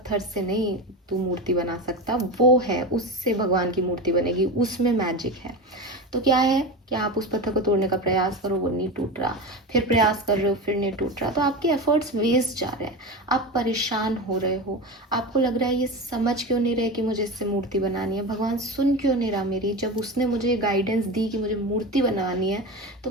से नहीं तू मूर्ति बना सकता, वो है उससे भगवान की मूर्ति बनेगी, उसमें मैजिक है। तो क्या है कि आप उस पत्थर को तोड़ने का प्रयास करो, वो नहीं टूट रहा, फिर प्रयास कर रहे हो फिर नहीं टूट रहा, तो आपके एफर्ट्स वेस्ट जा रहे हैं, आप परेशान हो रहे हो, आपको लग रहा है ये समझ क्यों नहीं रहे कि मुझे इससे मूर्ति बनानी है, भगवान सुन क्यों नहीं रहा मेरी, जब उसने मुझे गाइडेंस दी कि मुझे मूर्ति बनानी है तो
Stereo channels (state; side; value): normal; both; correlation 0.23